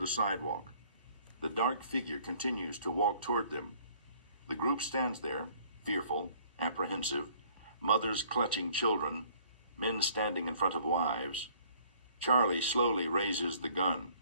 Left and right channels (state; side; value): inverted; both; correlation -0.58